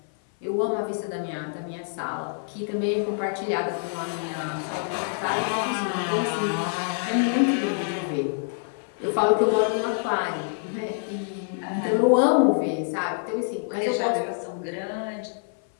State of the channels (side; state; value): right; silent; 56 dB below the other